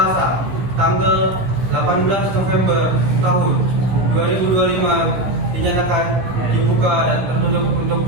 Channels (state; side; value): late; left; 15 ms